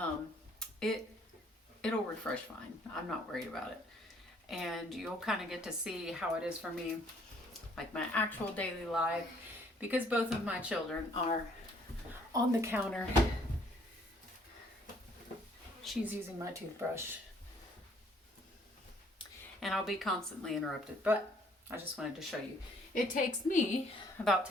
It'll refresh fine. I'm not worried about it. And you'll kind of get to see how it is for me, like my actual daily life, because both of my children are on the counter. She's using my toothbrush. And I'll be constantly interrupted, but I just wanted to show you. It takes me about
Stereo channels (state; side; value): normal; both; correlation 0.62